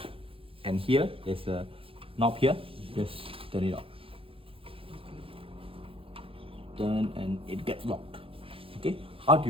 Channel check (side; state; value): left; late; 0.27 ms